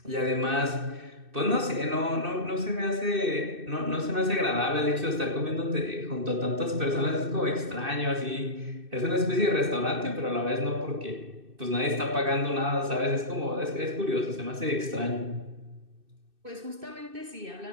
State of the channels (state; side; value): late; left; 2.6 ms